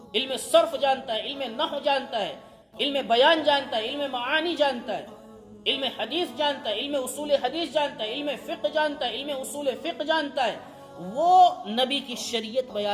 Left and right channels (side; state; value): both; identical; correlation 1.00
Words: علم صرف جانتا ہے، علم نحو جانتا ہے، علم بیان جانتا ہے، علم معانی جانتا ہے، علم حدیث جانتا ہے، علم اصول حدیث جانتا ہے، علم فقہ جانتا ہے، علم اصول فقہ جانتا ہے، وہ نبی کی شریعت